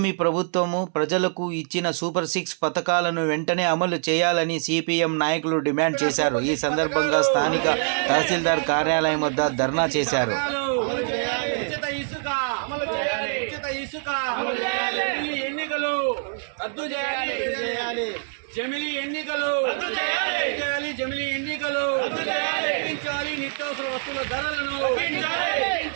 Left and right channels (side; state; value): left; silent; 62 dB below the other